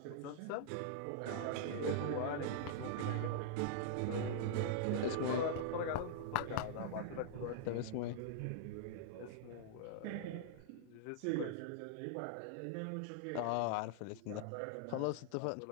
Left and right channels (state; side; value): different; both; correlation -0.01